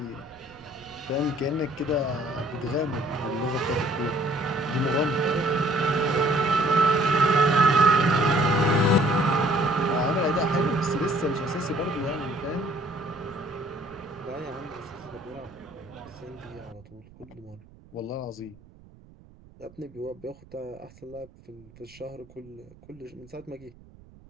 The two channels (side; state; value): right; noise; rumble, 24 dB below the sound